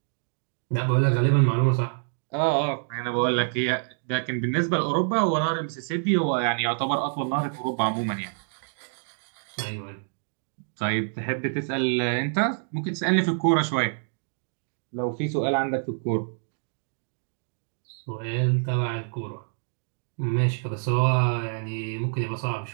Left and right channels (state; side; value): silent; left; digital silence